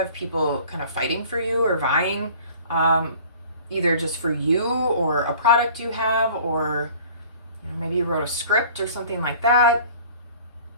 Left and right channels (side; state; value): both; inverted; correlation -0.48